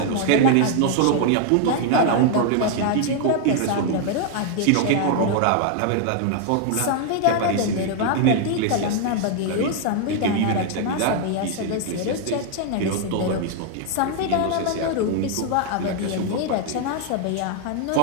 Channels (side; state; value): both; different; correlation 0.00